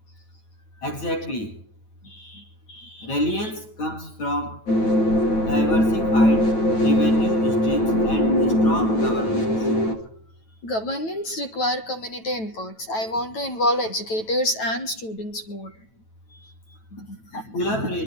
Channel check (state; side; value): late; right; 9.1 ms